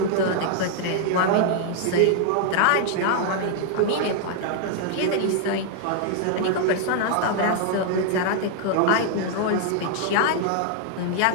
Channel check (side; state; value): both; different; correlation 0.00